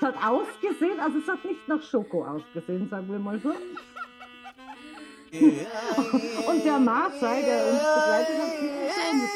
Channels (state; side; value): identical; both; correlation 1.00